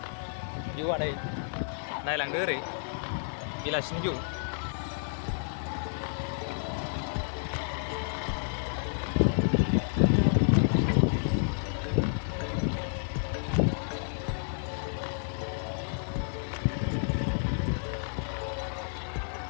भिउआ नै नायलांदो ओरै बेलासिनि भिउ.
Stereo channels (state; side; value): silent; right; 57 dB below the other